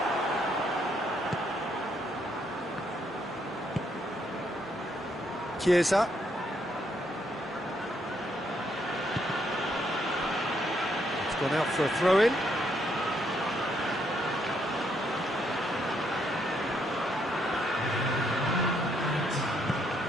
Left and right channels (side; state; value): both; normal; correlation 0.74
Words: Chiesa. It's gone out for a throw-in.